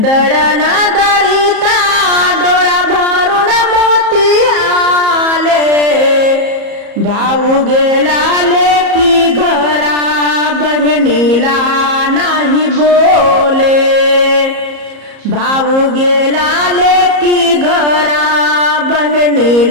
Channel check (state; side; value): late; left; 34 ms